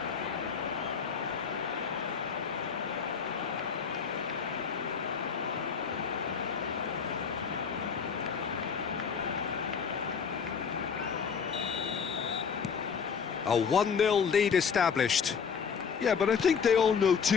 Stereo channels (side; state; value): right; quieter; 6.4 dB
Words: A 1-0 lead established. Yeah, but I think they all know